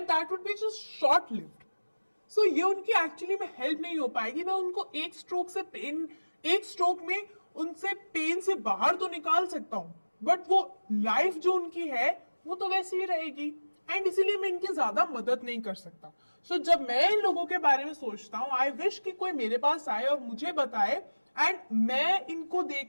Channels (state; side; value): inverted; both; correlation -1.00